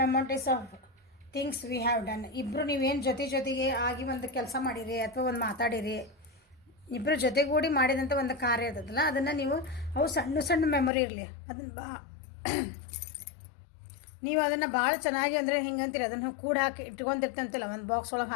of things we have done. ಇಬ್ಬರು ನೀವೇನು ಜೊತೆಗೆ ಆಗಿ ಒಂದು ಕೆಲಸ ಮಾಡಿರಿ ಅಥವಾ ಒಂದು ಮಾತಾಡಿರಿ, ಇಬ್ಬರು ಜೊತೆಗೂಡಿ ಮಾಡಿದಂಥ ಒಂದು ಕಾರ್ಯ ಇರ್ತದಲ್ಲ, ಅದನ್ನು ನೀವು ಅವು ಸಣ್ಣ ಮೆಮೊರಿ ಇರಲಿ, ಅದನ್ನು ನೀವು ಅದನ್ನು ಭಾಳ ಚೆನ್ನಾಗಿ ಅಂದರೆ ಹಿಂಗಂತೀರಿ, ಅದನ್ನು ಕೂಡ ಹಾಕಿ ಇಟ್ಕೊಂತಿರ್ತಂತಿಲ್ಲ, ಒಂದು ಬಾಕ್ಸ್ ಒಳಗೆ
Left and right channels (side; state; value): right; drops out; at 10.9 s